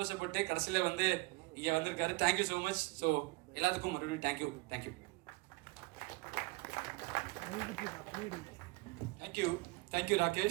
கடைசியில் வந்து இங்கே வந்திருக்காரு. Thank you so much. ஸோ எல்லாத்துக்கும் மறுபடியும் தேங்க்யூ. தேங்க்யூ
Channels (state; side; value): quieter; left; 23.7 dB